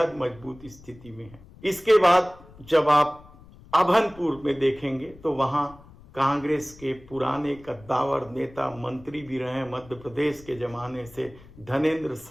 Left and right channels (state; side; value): noise; left; rumble, 22 dB below the sound